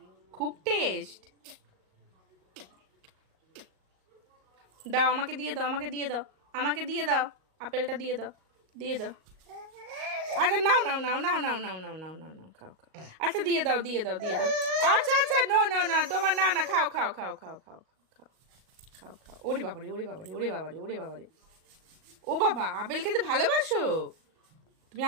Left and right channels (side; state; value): left; late; 38 ms